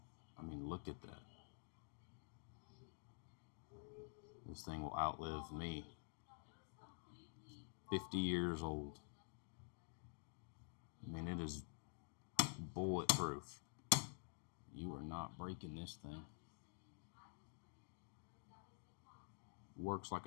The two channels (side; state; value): right; silent; digital silence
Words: I mean, look at that. This thing will outlive me. 50 years old. I mean, it is bulletproof. You are not breaking this thing. Works like